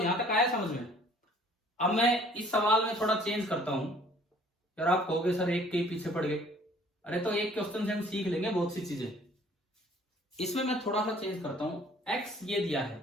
तक आया समझ में। अब मैं इस सवाल में थोड़ा चेंज करता हूं। यार आप कहोगे सर एक के पीछे पड़ गए, अरे तो एक क्वेश्चन से हम सीख लेंगे बहुत सी चीजें। इसमें मैं थोड़ा सा चेंज करता हूं, x ये दिया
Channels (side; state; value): both; normal; correlation 0.55